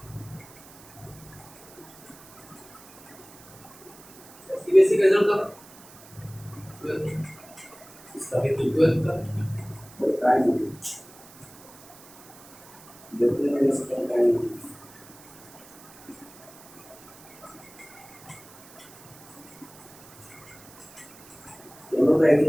बेसिक रिजल्ट का इसका भी 12 का टाइम देखते हैं इसका टाइम, दोनों का एक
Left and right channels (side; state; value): right; noise; hiss, 21 dB below the sound